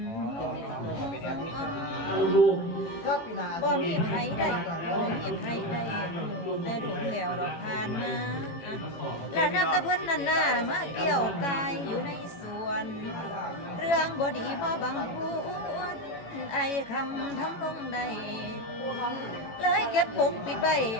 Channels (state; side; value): late; right; 18 ms